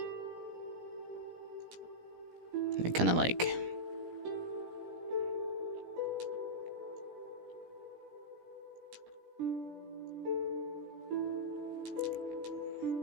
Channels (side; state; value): left; late; 17 ms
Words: Kind of like...